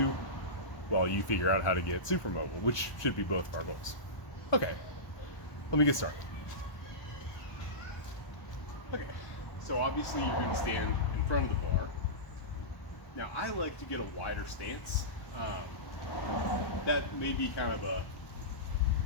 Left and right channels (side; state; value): right; late; 1.2 ms